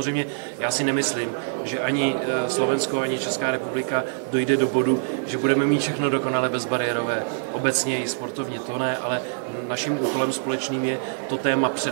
já si nemyslím, že ani Slovensko, ani Česká republika dojde do bodu, že budeme mít všechno dokonale bezbariérové. Obecně i sportovně to ne, ale naším úkolem společným je to téma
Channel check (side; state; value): left; silent; digital silence